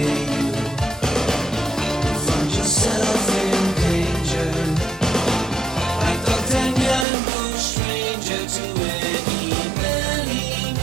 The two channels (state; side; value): drops out; left; at 7.1 s